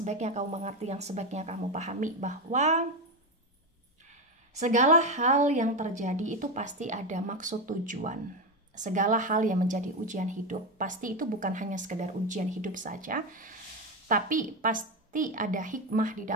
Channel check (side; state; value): both; normal; correlation 0.14